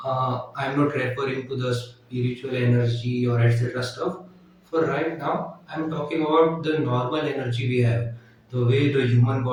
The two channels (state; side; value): identical; both; correlation 1.00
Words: I'm not referring to the spiritual energy or etc. stuff. For right now, I'm talking about the normal energy we have, the way the human